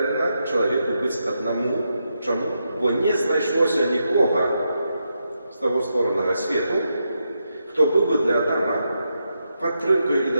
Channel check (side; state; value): both; inverted; correlation -0.84